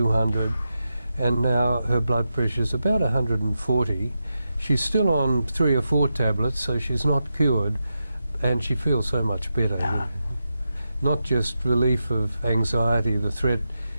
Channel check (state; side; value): inverted; both; correlation -0.89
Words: and now her blood pressure is about 140. She's still on 3 or 4 tablets, so she's not cured, and she feels so much better. Not just relief of anxiety, the threat